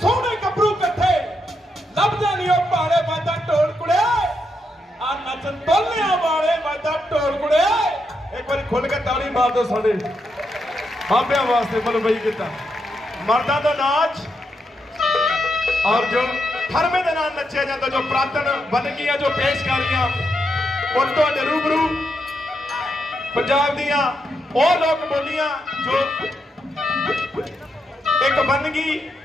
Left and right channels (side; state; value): both; normal; correlation 0.82